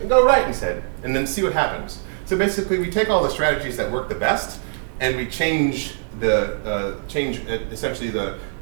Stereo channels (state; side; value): silent; left; digital silence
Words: go right instead, and then see what happens. So basically, we take all the strategies that work the best, and we change essentially the